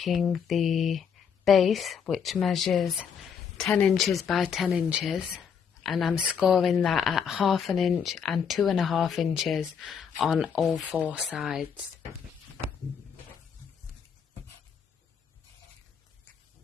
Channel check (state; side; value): quieter; right; 7.0 dB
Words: the base, which measures 10 inches by 10 inches, and I'm scoring that at 1/2 inch and 2.5 inches on all 4 sides.